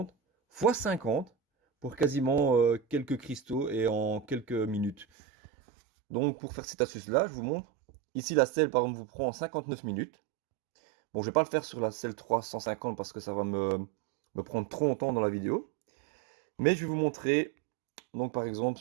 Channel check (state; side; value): drops out; left; at 5.1 s